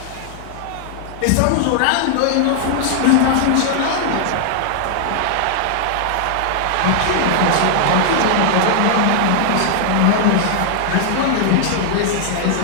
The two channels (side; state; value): both; different; correlation -0.01